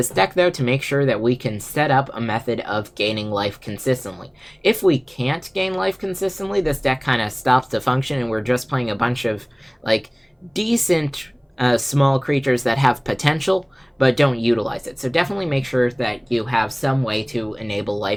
deck, though, to make sure that we can set up a method of gaining life consistently. If we can't gain life consistently, this deck kind of stops to function, and we're just playing a bunch of, like, decent small creatures that have potential, but don't utilize it. So definitely make sure that you have some way to enable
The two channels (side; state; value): both; identical; correlation 1.00